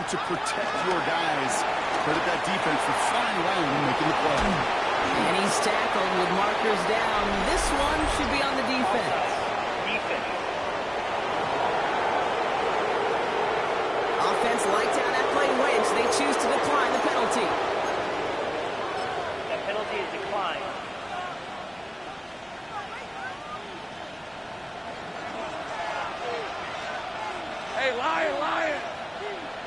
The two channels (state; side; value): identical; both; correlation 1.00